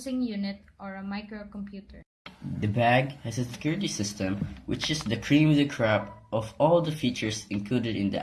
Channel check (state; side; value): identical; both; correlation 1.00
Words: unit or a microcomputer. The bag has a security system, which is the cream of the crop of all the features included in the